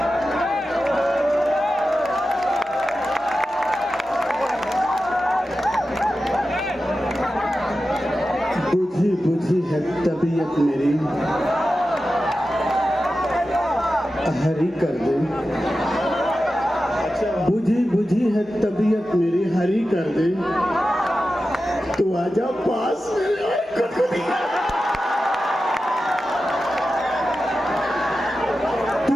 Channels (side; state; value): both; normal; correlation 0.92